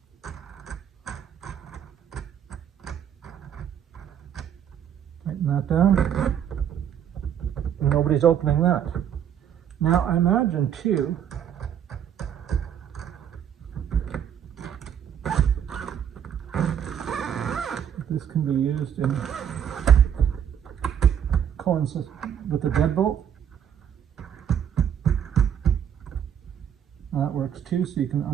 Tighten that down. And nobody's opening that. Now I imagine too, this can be used in coincides with the deadbolt. That works too, so you can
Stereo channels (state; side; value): quieter; left; 9.0 dB